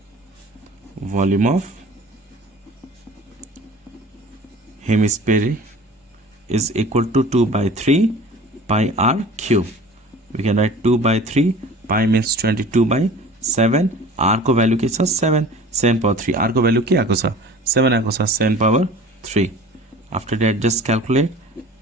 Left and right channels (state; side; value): normal; both; correlation 0.43